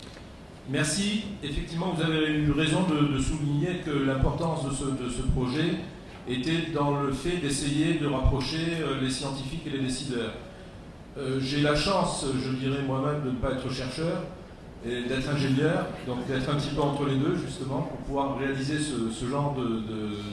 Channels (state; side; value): identical; both; correlation 1.00